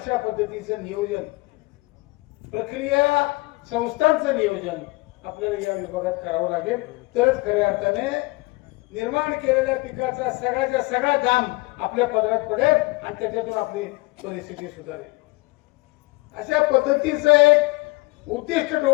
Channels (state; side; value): quieter; right; 23.8 dB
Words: पद्धतीचं नियोजन, प्रक्रिया संस्थांचं नियोजन आपल्याला या विभागात करावं लागेल. तरच खऱ्या अर्थाने निर्माण केलेल्या पिकाचा सगळ्याचा सगळा दाम आपल्या पदरात पडेल आणि त्याच्यातून आपली परिस्थिती सुधारेल. अशा पद्धतीचं एक उद्दिष्ट